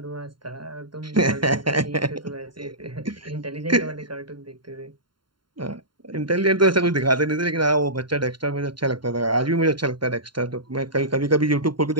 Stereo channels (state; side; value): late; left; 0.72 ms